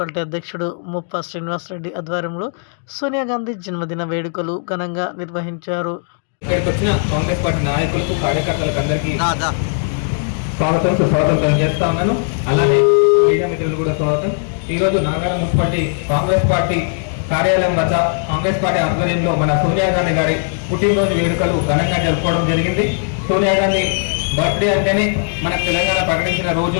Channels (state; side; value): silent; right; 64 dB below the other